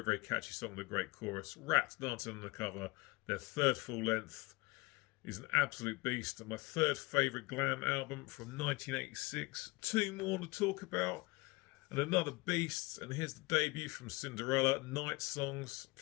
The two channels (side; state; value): right; quieter; 23.2 dB